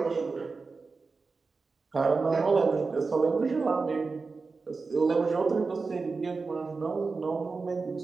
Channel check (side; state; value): left; quieter; 4.3 dB